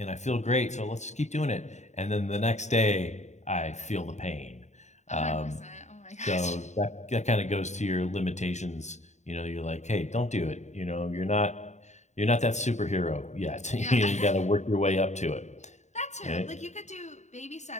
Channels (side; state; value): right; late; 0.34 ms